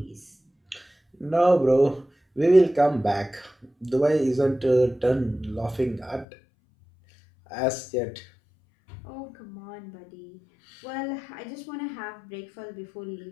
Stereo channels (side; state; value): right; drops out; at 6.2 s